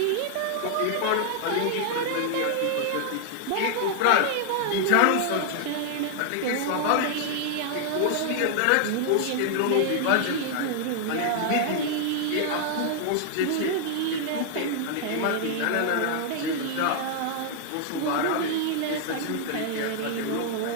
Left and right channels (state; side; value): different; both; correlation 0.00